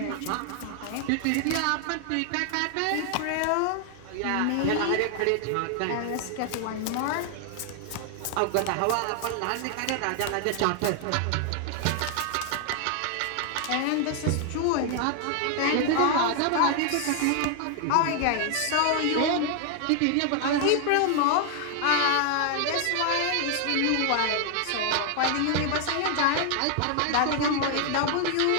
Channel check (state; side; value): different; both; correlation 0.00